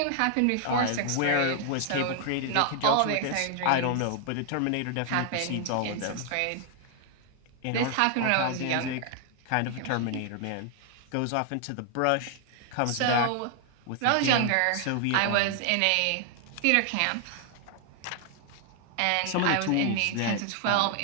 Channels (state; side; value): different; both; correlation 0.00